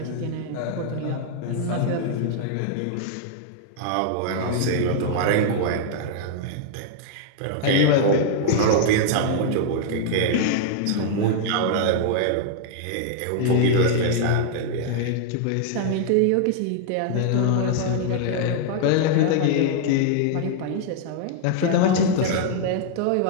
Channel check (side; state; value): both; different; correlation 0.00